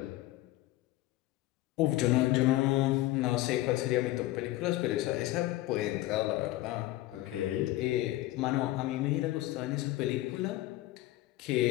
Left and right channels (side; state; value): right; quieter; 16.8 dB